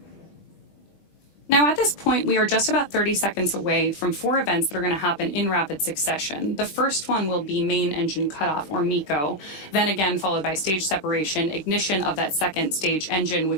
Now, at this point, we are just about 30 seconds away from 4 events that are going to happen in rapid succession. The first one will be main engine cutoff, or MECO, then again followed by stage separation, ignition of that second stage engine,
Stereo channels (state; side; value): late; right; 21 ms